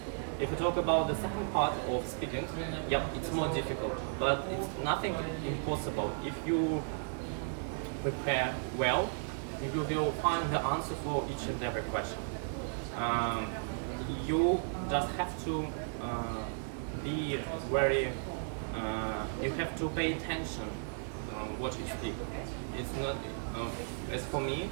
If you talk about the second part of speaking, yep, it's more difficult, but it's nothing impossible. If you prepare well, you will find the answer for each and every question. You just have to be very. You have to pay attention on what you speak. It's not as for me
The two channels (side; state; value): left; silent; digital silence